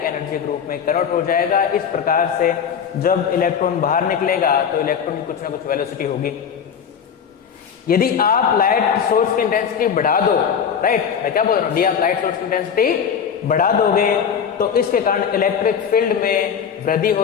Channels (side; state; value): right; quieter; 7.5 dB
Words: एनर्जी के रूप में कन्वर्ट हो जाएगा। इस प्रकार से जब इलेक्ट्रॉन बाहर निकलेगा तो इलेक्ट्रॉन की कुछ ना कुछ वेलोसिटी होगी। यदि आप लाइट सोर्स की इंटेंसिटी बढ़ा दो, राइट, मैं क्या बोल रहा हूं, यदि आप लाइट सोर्स की इंटेंसिटी बढ़ा दोगे तो इसके कारण इलेक्ट्रिक फील्ड में वृद्धि